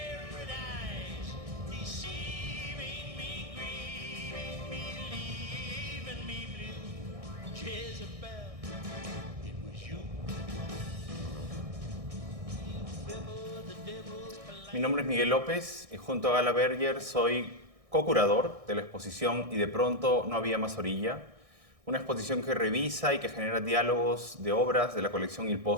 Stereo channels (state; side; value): late; left; 1.6 ms